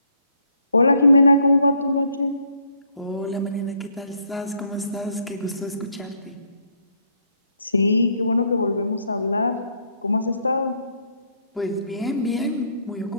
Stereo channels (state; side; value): inverted; both; correlation -0.68